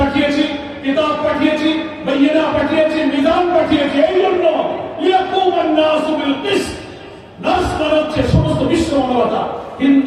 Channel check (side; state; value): both; identical; correlation 1.00